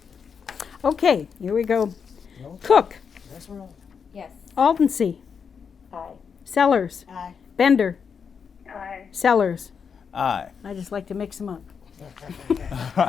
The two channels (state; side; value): quieter; right; 6.4 dB